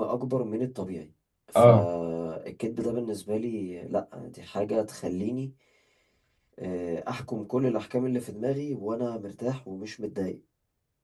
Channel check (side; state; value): both; identical; correlation 1.00